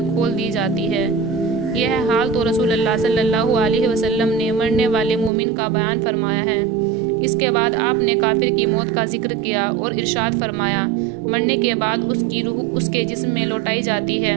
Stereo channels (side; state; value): left; drops out; at 5.3 s